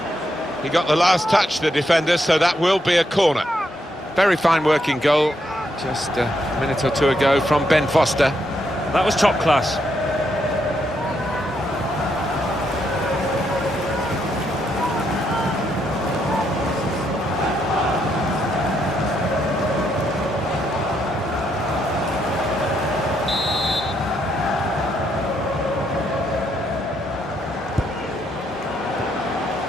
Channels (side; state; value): both; normal; correlation 0.77